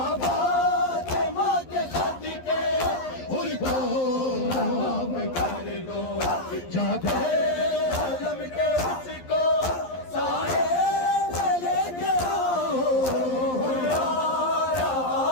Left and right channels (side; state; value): right; late; 11 ms